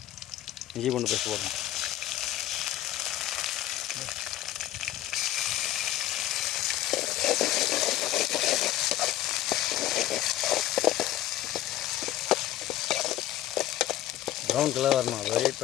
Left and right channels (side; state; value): right; quieter; 13.7 dB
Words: இஞ்சி கொண்டு பேச போகிறோம். ப்ரௌன் கலர் வரணும், அது வெயிட்